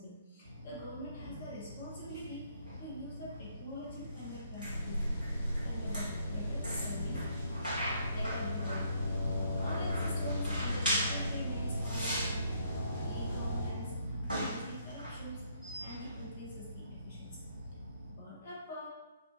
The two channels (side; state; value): both; inverted; correlation -0.70